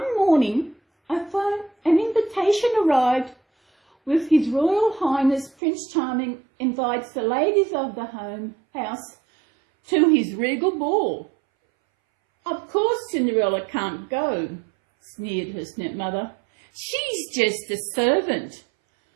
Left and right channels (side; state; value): left; drops out; at 5.5 s